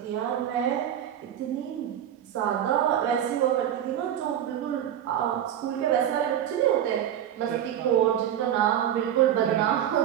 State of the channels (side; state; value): left; quieter; 10.5 dB